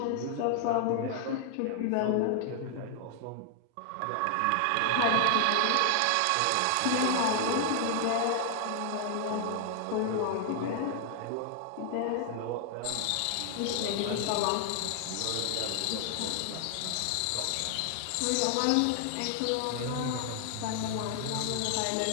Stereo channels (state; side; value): different; both; correlation 0.00